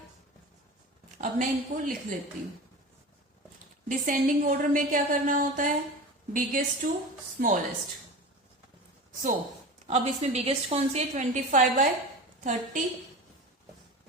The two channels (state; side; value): normal; both; correlation 0.31